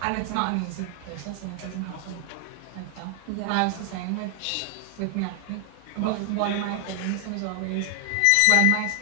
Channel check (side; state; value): both; different; correlation 0.00